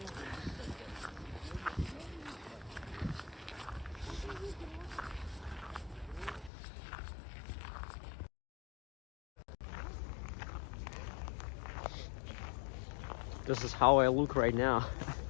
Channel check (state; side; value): drops out; right; at 6.5 s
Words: This is how I look right now.